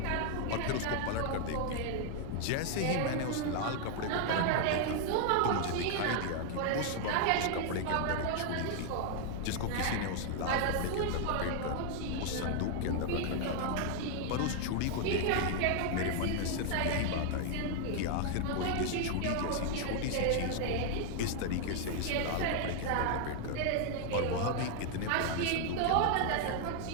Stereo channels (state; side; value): different; both; correlation 0.00